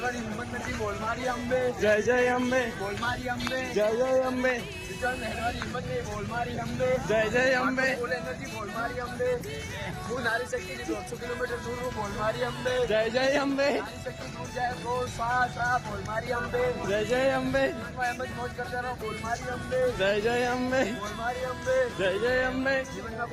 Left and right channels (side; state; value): both; identical; correlation 1.00